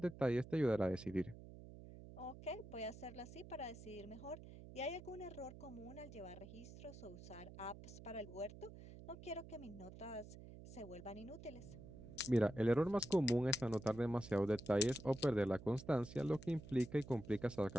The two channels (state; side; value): noise; right; hum, 14 dB below the sound